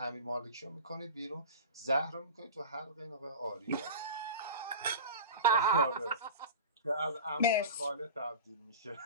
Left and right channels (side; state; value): both; inverted; correlation -0.31